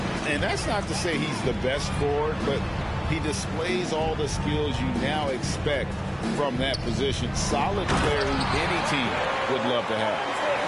And that's not to say he's the best forward, but he displays all the skills you now expect from that position. Solid player who any team would love to have.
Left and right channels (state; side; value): identical; both; correlation 1.00